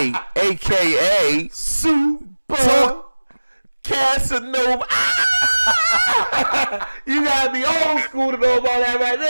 AKA Super Casanova. You gotta be old school to know about that right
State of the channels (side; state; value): both; inverted; correlation -1.00